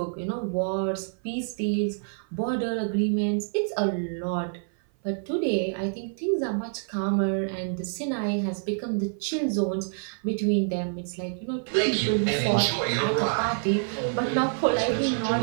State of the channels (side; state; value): left; silent; 56 dB below the other